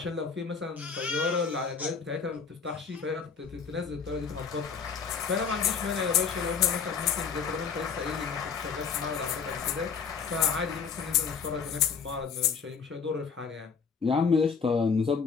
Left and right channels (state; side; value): quieter; right; 6.0 dB